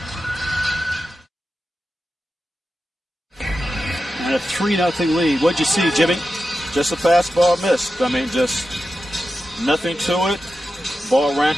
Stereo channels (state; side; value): normal; both; correlation 0.91